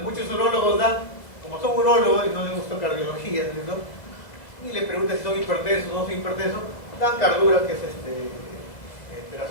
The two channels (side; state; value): right; late; 2.0 ms